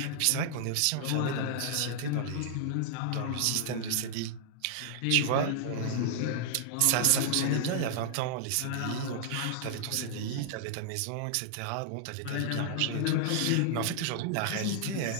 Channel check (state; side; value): different; both; correlation -0.01